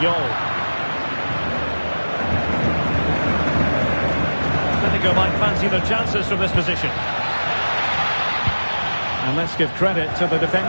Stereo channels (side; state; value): both; inverted; correlation -1.00